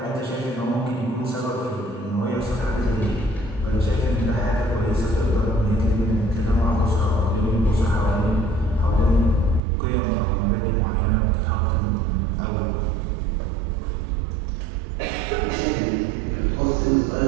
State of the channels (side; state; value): left; drops out; at 9.6 s